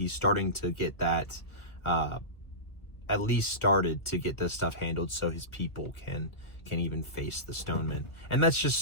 starting to get that, at least started to get this stuff handled so his people can even face the stonemen. And that's just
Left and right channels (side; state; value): right; late; 1.7 ms